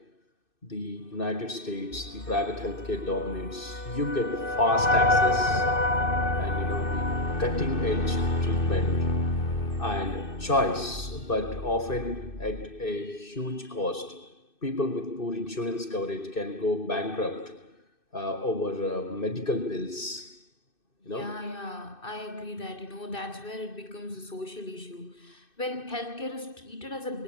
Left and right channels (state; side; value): late; right; 2.6 ms